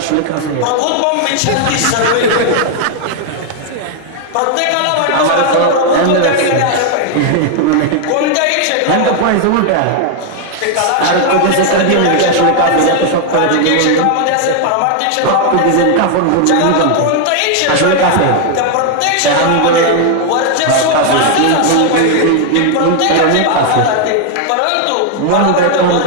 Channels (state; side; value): different; both; correlation 0.00